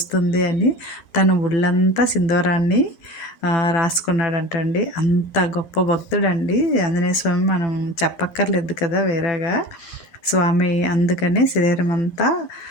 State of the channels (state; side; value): late; right; 12 ms